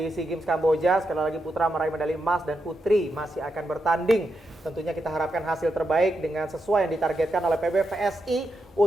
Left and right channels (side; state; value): both; normal; correlation 0.85